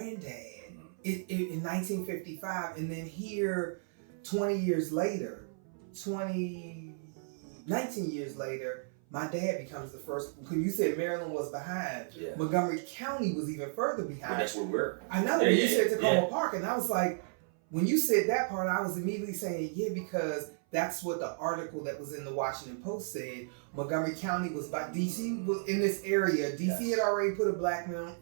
in 1955, and then here 19 years later, my dad becomes the first. When you said Maryland was behind, Montgomery County was even further behind. Well, that's where we're. I know. You said Tacoma Park, and I was like, when you said that part, I was immediately saying, because that's what the article that was in the Washington Post said. Montgomery County was by DC was in this area. DC had already put a black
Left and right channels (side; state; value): left; silent; 55 dB below the other